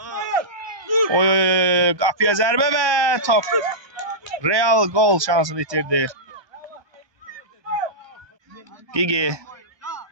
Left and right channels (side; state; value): left; late; 1.2 ms